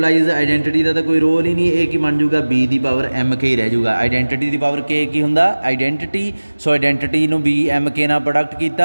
identity का तो कोई रोल ही नहीं, ए की बन जाऊगा बी दी पावर एम के ही रह जाऊगा। आइडेंटिटी दी पावर के की हुंदा आइडेंटिटी, सो आइडेंटिटी नूं बी एम के नाल प्रोडक्ट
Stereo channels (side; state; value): both; inverted; correlation -1.00